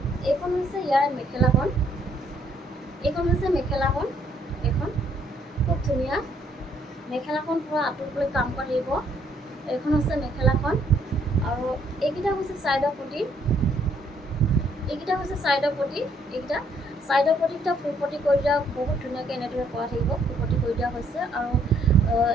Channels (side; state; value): both; normal; correlation 0.68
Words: এইখন হৈছে ইয়াৰ মেখেলাখন, এইখন খুব ধুনীয়া। মেখেলাখন পূৰা আঁঠু ওপৰলৈ কাম কৰা থাকিব, এইখন হৈছে মেখেলাখন। আৰু এইকেইটা হৈছে চাইডৰ পটি, চাইডৰ পটিকেইটা ফুল পটি কৰি দিয়া, বহুত ধুনীয়াকৈ এনেদৰে কৰা থাকিব, ফুল পটি কৰি দিয়া হৈছে। আৰু